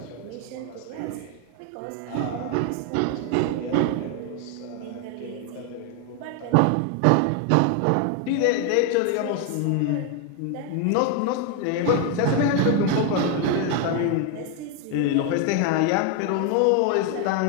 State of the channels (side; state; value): both; different; correlation 0.01